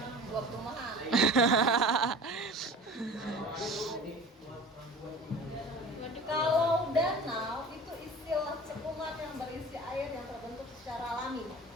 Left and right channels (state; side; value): normal; both; correlation 0.39